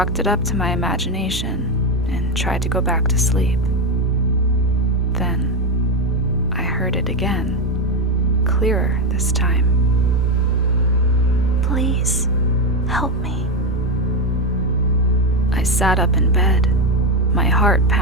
it up to my imagination and tried to go back to sleep. Then, I heard it again, clearer this time. "Please, help me." I sat up in bed, my heart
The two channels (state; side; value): normal; both; correlation 0.10